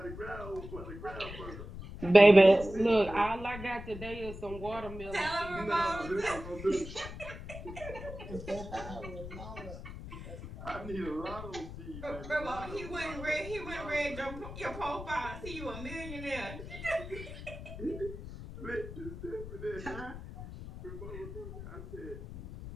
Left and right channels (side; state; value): left; noise; rumble, 11 dB below the sound